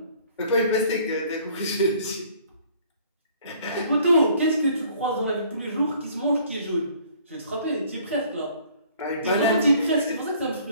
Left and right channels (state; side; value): inverted; both; correlation -0.56